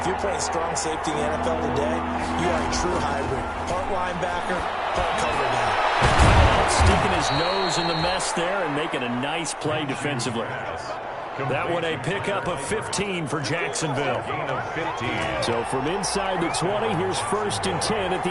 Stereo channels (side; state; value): both; identical; correlation 1.00